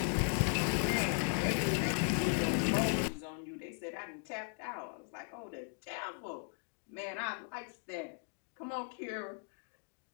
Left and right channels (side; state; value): right; silent; 53 dB below the other